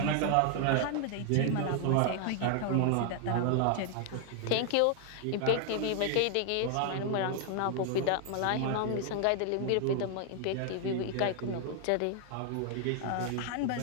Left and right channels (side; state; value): both; different; correlation 0.00